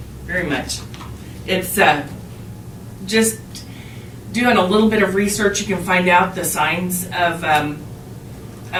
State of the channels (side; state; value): both; identical; correlation 1.00